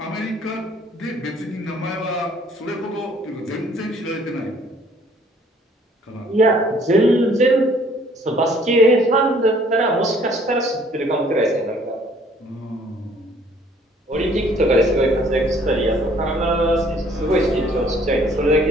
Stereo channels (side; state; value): both; normal; correlation 0.59